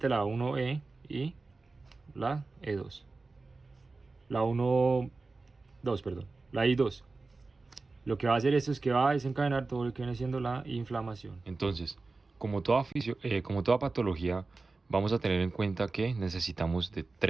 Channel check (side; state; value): left; quieter; 3.7 dB